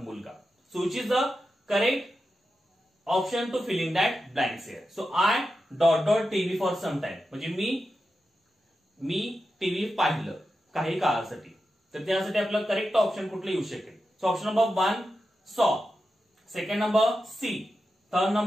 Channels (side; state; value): both; normal; correlation 0.90